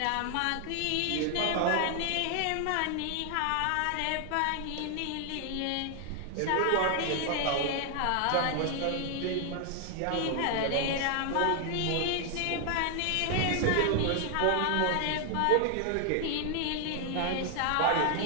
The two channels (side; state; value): both; different; correlation 0.00